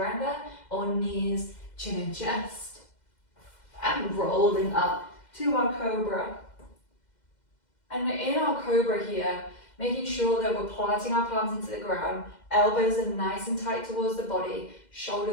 on knees, chin and chest, and rolling up to our cobra. And in our cobra here, making sure that we're planting our palms into the ground, elbows are nice and tight towards the body,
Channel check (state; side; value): late; right; 2.1 ms